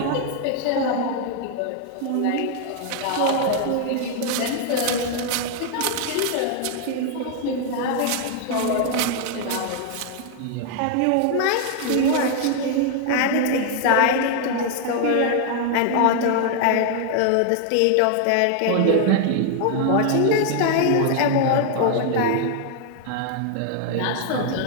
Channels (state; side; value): different; both; correlation 0.00